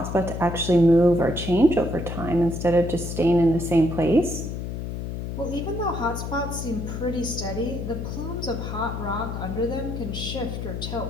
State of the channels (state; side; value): noise; left; hum, 5 dB below the sound